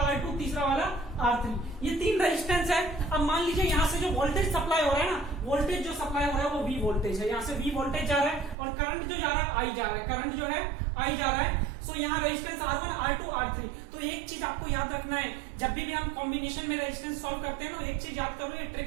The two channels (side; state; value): left; drops out; at 8.6 s